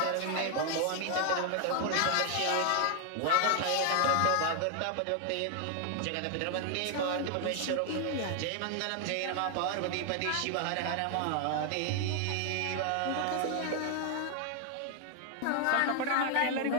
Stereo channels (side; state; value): both; different; correlation 0.00